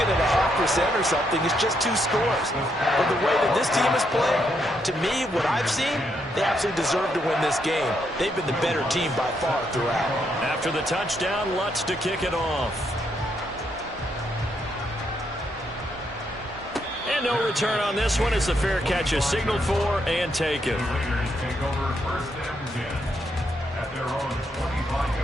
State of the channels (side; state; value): both; normal; correlation 0.77